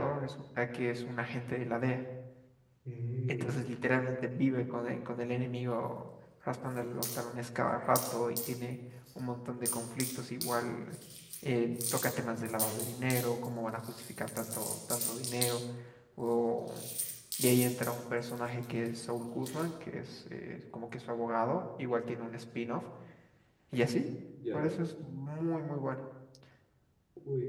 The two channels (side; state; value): both; identical; correlation 1.00